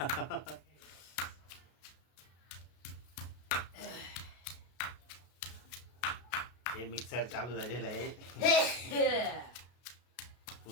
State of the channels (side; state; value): right; late; 33 ms